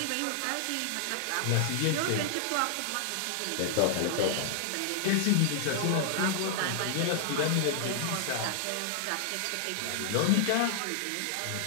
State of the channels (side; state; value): both; different; correlation -0.01